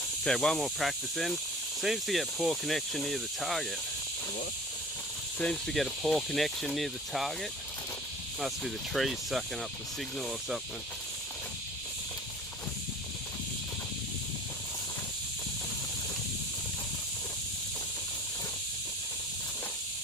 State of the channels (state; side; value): normal; both; correlation 0.43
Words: Okay, one more practice then. Seems to get poor connection near the target. What? Seems to get a poor connection near the target. Must be the trees sucking up the signal or something.